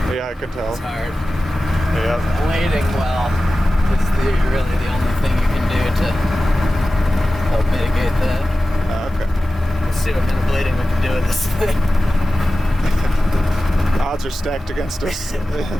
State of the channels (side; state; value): both; normal; correlation 0.95